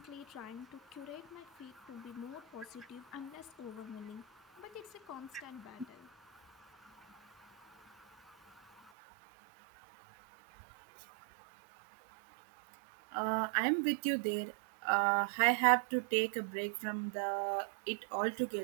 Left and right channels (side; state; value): left; drops out; at 8.9 s